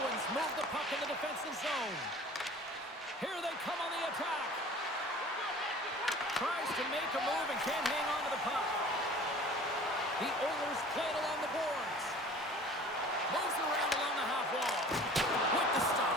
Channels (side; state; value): both; normal; correlation 0.46